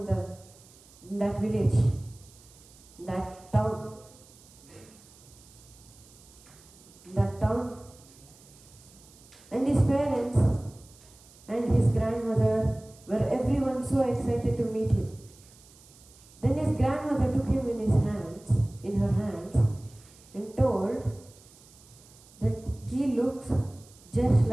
in that village, that town. And his parents and his grandmother were everyone so excited to meet him. Then his grandmother took him in her hands, and told that he looks just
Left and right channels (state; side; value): noise; right; hiss, 24 dB below the sound